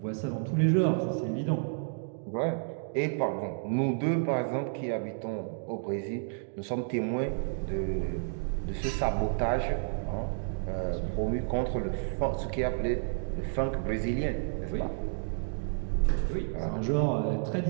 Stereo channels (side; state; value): left; silent; digital silence